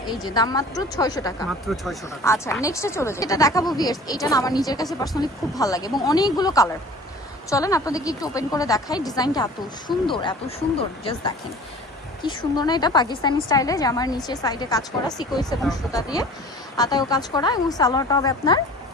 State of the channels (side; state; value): both; normal; correlation 0.44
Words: এই যে দাম মাত্র 600 টাকা। মাত্র 600 টাকা। আচ্ছা, নেক্সটে চলে যাই। এটা দেখাবো ভিউয়ার্স, এটা না আমার নিজের কাছে পার্সোনালি খুব ভালো লাগে এবং অনেকগুলো কালার। চলেন আপনাদেরকে একটু ওপেন করে দেখাই। ডিজাইনটা এত সুন্দর, এত সুন্দর, জাস্ট দেখেন কি সুন্দর না। এটা পাকিস্তানি স্টাইলে, যে আমার নিচে সাইডে কাজ করা সিকোয়েন্স এবং সুতা দিয়ে আতায়ও কাজ করা, এবং সালোয়ারটা হবে আপনার